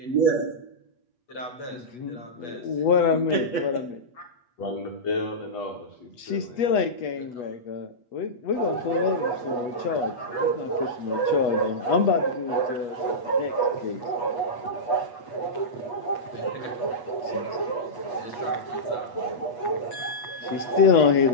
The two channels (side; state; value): right; late; 8.3 ms